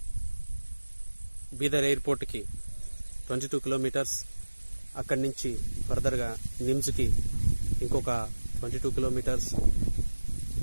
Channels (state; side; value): inverted; both; correlation -1.00